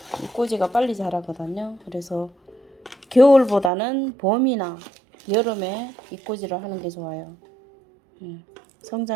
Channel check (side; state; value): left; drops out; at 3.7 s